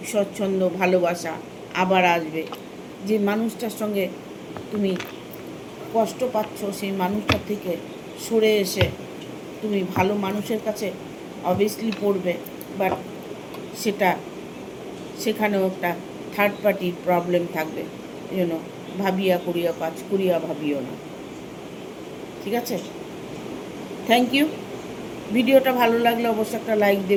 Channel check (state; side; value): identical; both; correlation 1.00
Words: স্বচ্ছন্দ ভালোবাসা আবার আসবে। যে মানুষটার সঙ্গে তুমি কষ্ট পাচ্ছ সেই মানুষটার থেকে সরে এসে তুমি ভালো মানুষের কাছে অবভিয়াসলি পড়বে, বাট সেখানেও একটা থার্ড পার্টির প্রবলেম থাকবে, এই জন্য ভাবিয়া করিয়া কাজ করিয়া ভাবিও না। ঠিক আছে, থ্যাংক ইউ। ভিডিওটা ভালো লাগলে অবশ্যই একটা লাইক